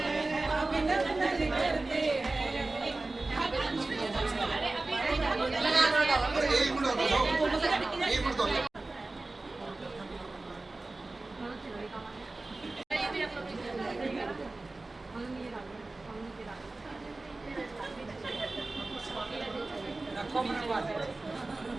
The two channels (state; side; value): quieter; left; 3.1 dB